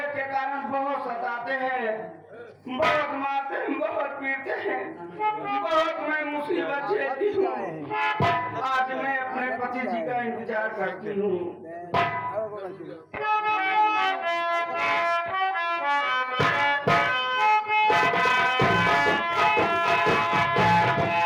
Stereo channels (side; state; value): both; identical; correlation 1.00